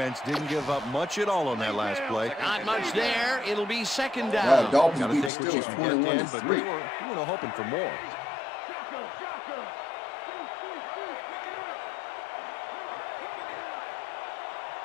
didn't give up much at all on that last play. Not much there. It'll be 2nd down. Wow, Dolphins Gotta beat the take what you Steelers can get, Dan, 21-3. but they were hoping for more.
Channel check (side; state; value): right; drops out; at 5.3 s